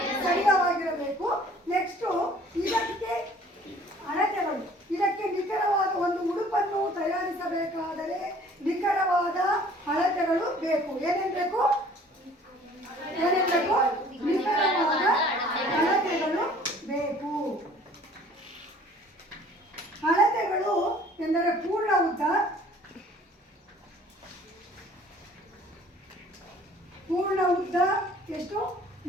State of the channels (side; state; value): both; normal; correlation 0.52